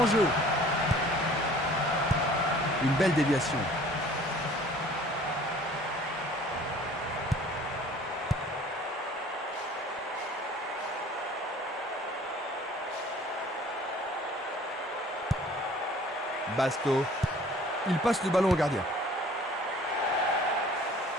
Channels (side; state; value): both; normal; correlation 0.50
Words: jeu. Une belle déviation. Basto. Il passe le ballon au gardien.